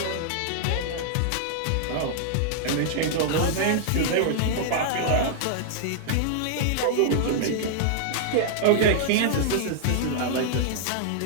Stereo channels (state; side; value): different; both; correlation -0.01